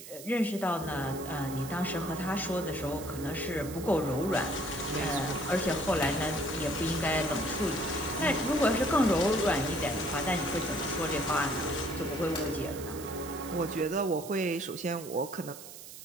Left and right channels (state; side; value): noise; right; hiss, 14 dB below the sound